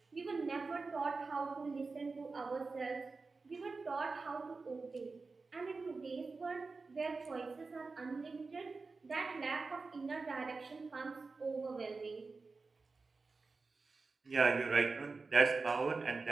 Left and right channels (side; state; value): left; quieter; 4.1 dB